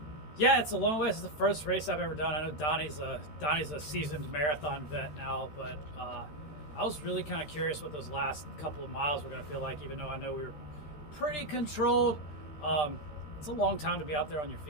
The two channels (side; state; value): right; late; 13 ms